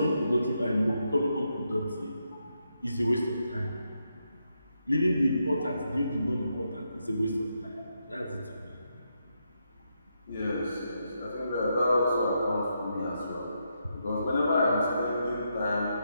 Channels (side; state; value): both; inverted; correlation -0.82